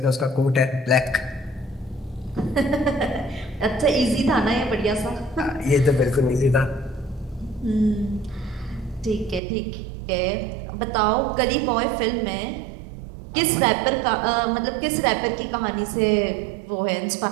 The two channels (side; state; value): left; drops out; at 9.4 s